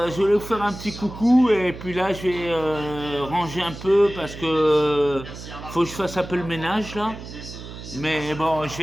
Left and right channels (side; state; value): right; noise; hum, 12 dB below the sound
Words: je vais vous faire un petit coucou, et puis là, je vais ranger un peu parce que faut que je fasse un peu le ménage, là. Mais bon, je